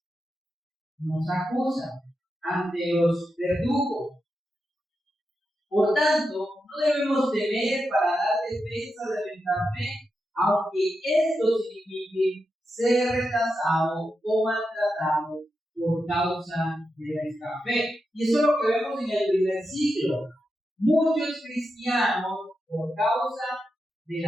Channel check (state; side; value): normal; both; correlation 0.87